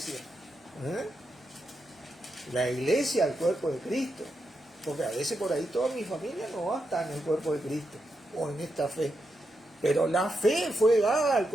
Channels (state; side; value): normal; both; correlation 0.85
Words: La iglesia, el cuerpo de Cristo, porque a veces por ahí toda mi familia no va a estar en el cuerpo de Cristo o en esta fe, pero la fe fue dada al